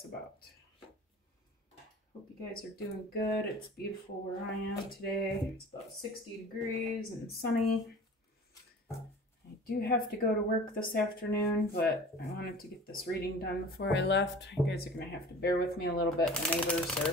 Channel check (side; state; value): both; normal; correlation 0.41